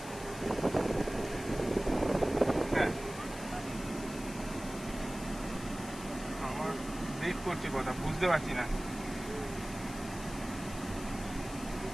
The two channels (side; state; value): left; noise; hiss, 14 dB below the sound